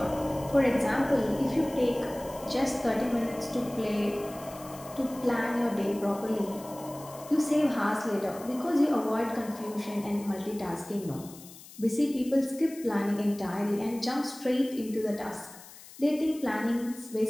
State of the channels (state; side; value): noise; left; hiss, 18 dB below the sound